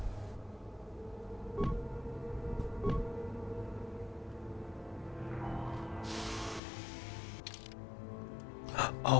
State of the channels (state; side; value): drops out; right; at 6.6 s